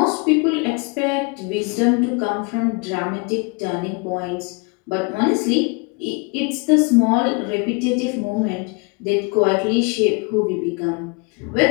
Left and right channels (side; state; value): right; quieter; 30.8 dB